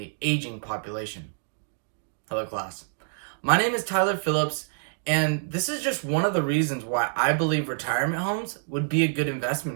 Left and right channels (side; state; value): left; silent; digital silence